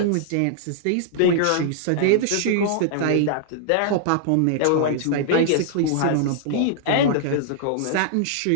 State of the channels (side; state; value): both; different; correlation -0.01